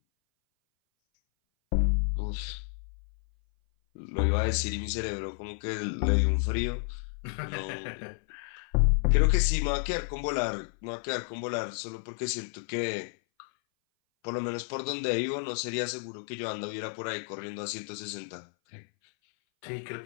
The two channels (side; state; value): right; silent; 57 dB below the other